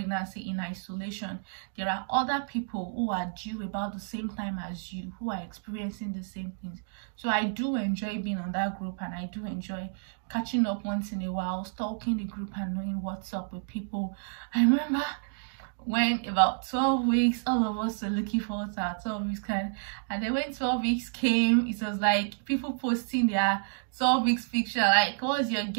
in isolation. There are other people who are due about the same time as you, who are experiencing the same things. So I do enjoy being on that group, and I do enjoy catching up once in a while, stalking the group and knowing what's up with people. I remember when about 12 weeks, all of us were looking forward to our 12 weeks kind, and then when 12 weeks came, it was like people posting their 12 weeks picture, like, what's your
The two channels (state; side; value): silent; left; digital silence